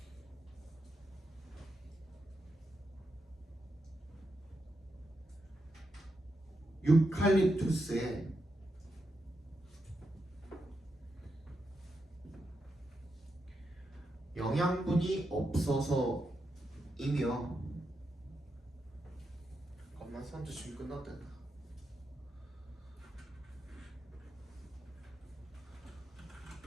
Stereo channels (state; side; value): normal; both; correlation 0.85